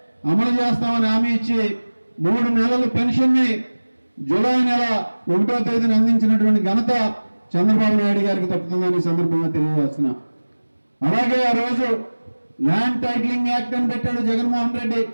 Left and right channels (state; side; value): inverted; both; correlation -1.00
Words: అమలు చేస్తామని హామీ ఇచ్చి 3 నెలల పెన్షన్ని జూలై నెల 1వ తేదీన అందించినటువంటి ఘనత చంద్రబాబు నాయుడు గారికి తప్పుతుందని ఈ సందర్భంగా తెలియజేస్తున్నా. అలాగే ఆ రోజు ల్యాండ్ టైటిలింగ్ యాక్ట్ అని పెట్టాడు జగన్మోహన్ రెడ్డి.